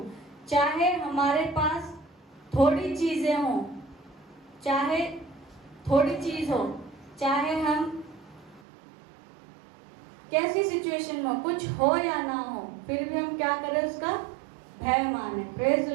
चाहे हमारे पास थोड़ी चीजें हो, चाहे थोड़ी चीज हो, चाहे हम कैसी सिचुएशन में हो, कुछ हो या ना हो, फिर भी हम क्या करें? उसका भय माने। Praise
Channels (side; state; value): left; drops out; at 8.6 s